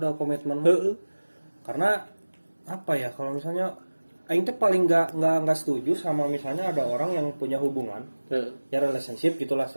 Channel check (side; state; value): both; inverted; correlation -1.00